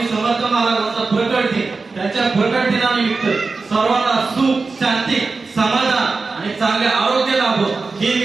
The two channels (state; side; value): quieter; left; 4.1 dB